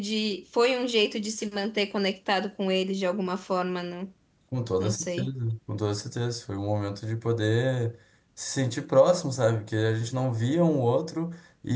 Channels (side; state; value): both; identical; correlation 1.00